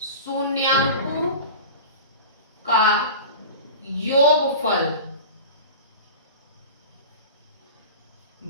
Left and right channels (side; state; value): both; inverted; correlation -0.33